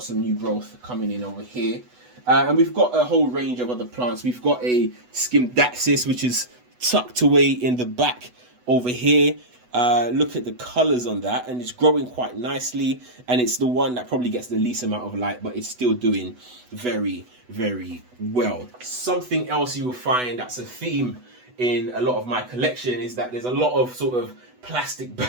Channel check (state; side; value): late; left; 8.1 ms